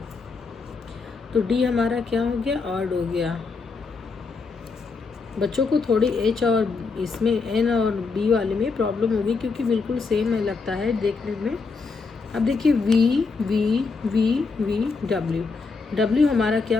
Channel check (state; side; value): quieter; right; 4.5 dB